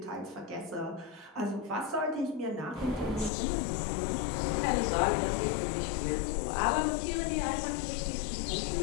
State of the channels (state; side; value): drops out; right; at 3.3 s